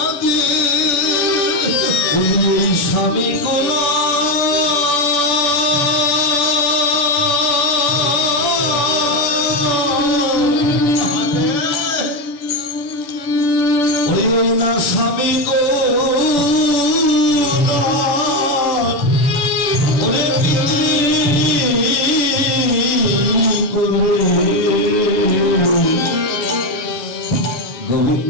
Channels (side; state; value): right; late; 6.9 ms